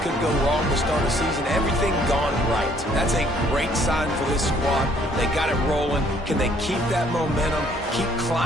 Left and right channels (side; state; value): both; normal; correlation 0.62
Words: could go wrong to start a season. Everything gone right. That's a great sign for this squad. They got it rolling. Can they keep that momentum, keep